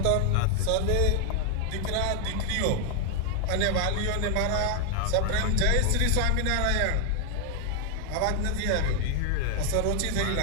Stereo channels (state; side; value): different; both; correlation 0.00